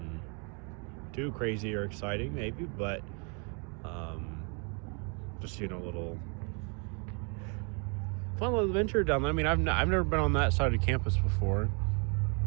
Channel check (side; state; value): left; quieter; 35.6 dB